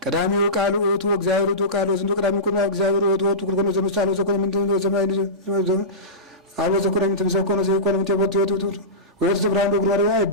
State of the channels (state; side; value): normal; both; correlation -0.20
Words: ቀዳሚው ቃል ውእቱ እግዚአብሔር ውእቱ ቃል ወዝንቶ ቀዳሚው ቁም እግዚአብሔር ውእቱ ውእቱ ኩሉ ዘምሳሌ ዘኮነ ምንድነው ዘማይ አሎ ዘኮነ ምንድነው ዘኮነ ዘኮነ ምንድነው ወጥቶ ወጥቶ ብራንዶ ግሮሪያ